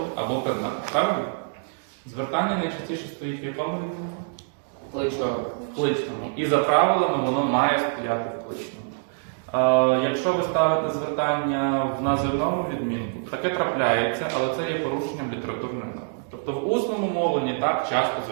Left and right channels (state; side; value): silent; left; digital silence